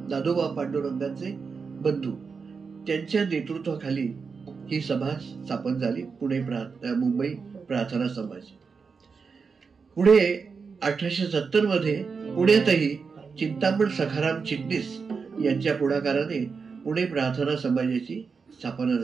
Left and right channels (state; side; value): quieter; left; 5.2 dB